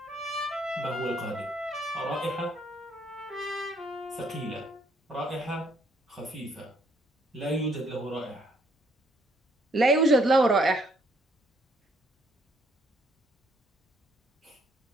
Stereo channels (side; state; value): both; normal; correlation 0.67